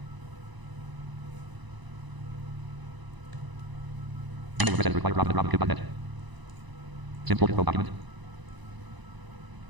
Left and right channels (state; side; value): late; left; 1.0 ms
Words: Email address required Robin@robinkill.net. Simple Pro document.